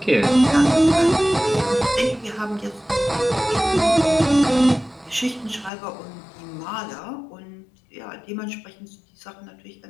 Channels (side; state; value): right; drops out; at 5.7 s